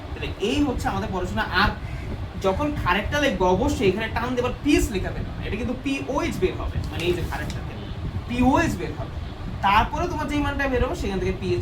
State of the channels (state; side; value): identical; both; correlation 1.00